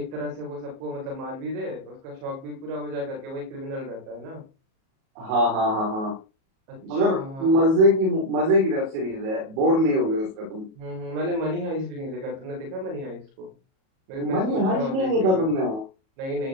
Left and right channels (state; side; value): late; left; 37 ms